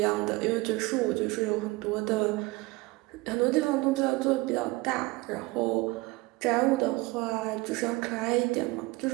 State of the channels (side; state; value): left; quieter; 22.3 dB